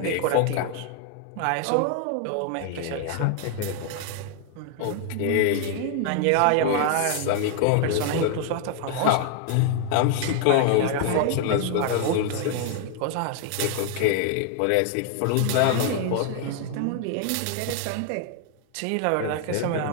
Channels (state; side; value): different; both; correlation 0.00